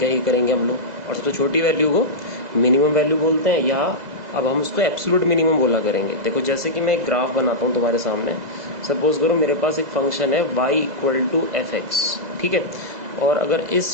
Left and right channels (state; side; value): late; left; 2.0 ms